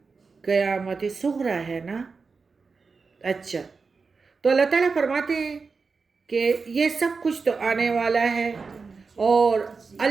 قیامت صغریٰ ہے نا. اچھا، تو اللہ تعالیٰ فرماتے ہیں کہ یہ سب کچھ تو آنے والا ہے اور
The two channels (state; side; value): quieter; left; 4.7 dB